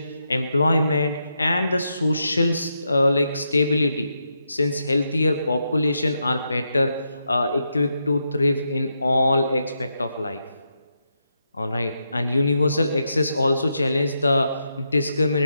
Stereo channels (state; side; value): inverted; both; correlation -0.83